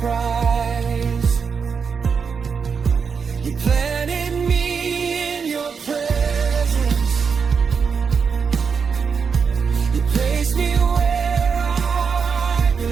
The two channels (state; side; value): quieter; left; 5.9 dB